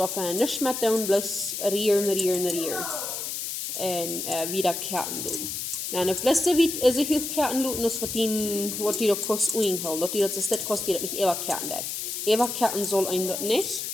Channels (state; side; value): noise; left; hiss, 4 dB below the sound